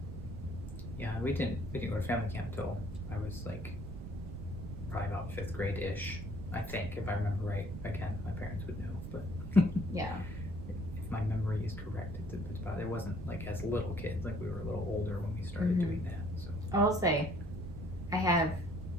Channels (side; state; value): right; noise; rumble, 8 dB below the sound